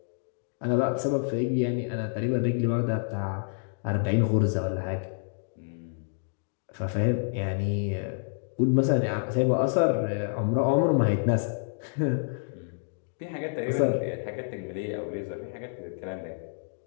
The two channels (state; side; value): silent; right; digital silence